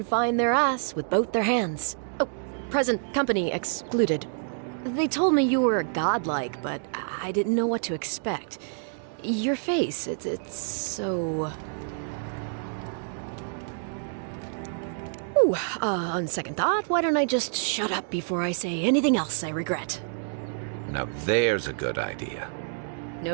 find their ass with both their hands. Oh, present company excluded. They told me you were godlike, but I didn't know what to expect. Your face, it's so... Ooh, on second thought, why don't I just shut up before I say anything else I regret? Now there's a good idea.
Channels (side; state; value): left; silent; digital silence